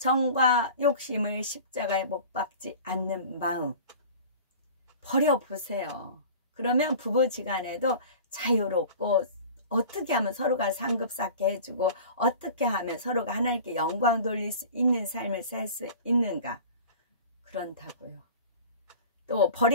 욕심을 십자가에 못 박지 않는 마음 버려보세요. 그러면 부부지간에도 자유롭고, 어떻게 하면 서로가 상급받게 해주고, 어떻게 하면 서로가 하나님께 영광 돌릴 수 있는 삶을 살 수 있는가, 그런다고요. 또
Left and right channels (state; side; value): inverted; both; correlation -0.40